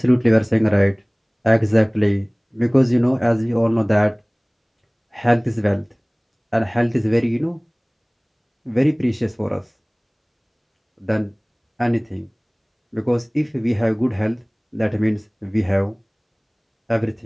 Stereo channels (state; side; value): identical; both; correlation 1.00